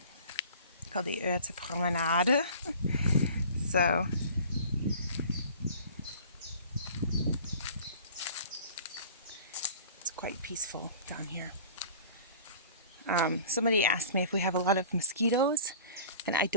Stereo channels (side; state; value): both; inverted; correlation -0.44